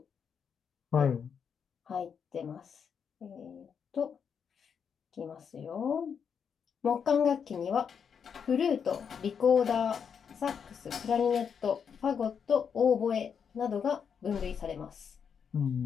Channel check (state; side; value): quieter; right; 7.0 dB